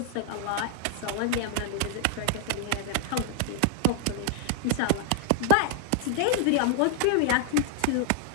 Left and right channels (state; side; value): different; both; correlation 0.00